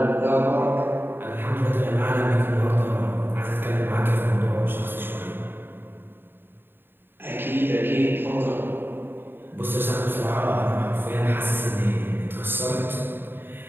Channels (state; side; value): late; left; 0.099 ms